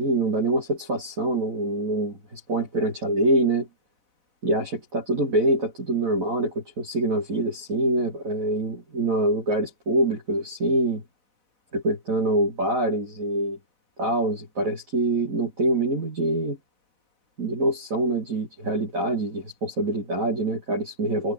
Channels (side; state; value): left; late; 4.0 ms